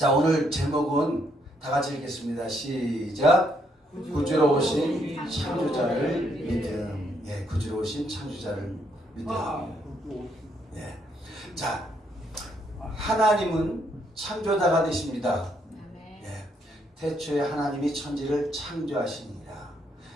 오늘 제목은 다 같이 읽겠습니다. 시작. 구주로 오신 창조자를 믿음. 예, 구주로 오신 창조자를 믿음. 예. 자, 하나님은 창조자가 되십니다. 예. 태초에 하나님이 천지를 창조하시니라.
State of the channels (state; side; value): normal; both; correlation 0.73